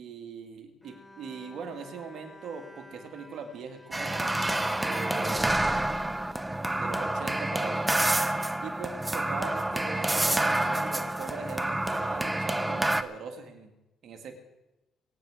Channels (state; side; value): normal; both; correlation 0.96